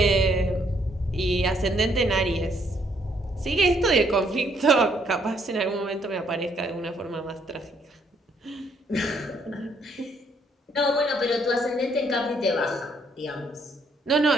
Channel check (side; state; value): both; normal; correlation 0.69